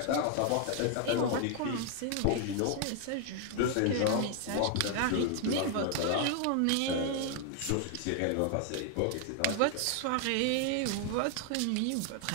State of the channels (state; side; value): different; both; correlation 0.00